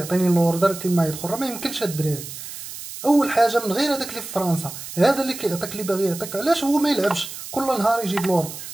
لوردر كما يدخل. راه ما يمكنش الدراري. اول حاجه من غير هذاك اللي في فرنسا، هذا اللي كيعطيك اللي باغي يعطيك، علاش هو ما يلعبش كل نهار يجيب لوردر؟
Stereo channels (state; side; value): noise; right; hiss, 11 dB below the sound